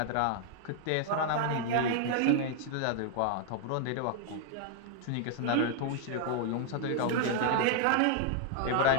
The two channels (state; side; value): different; both; correlation 0.00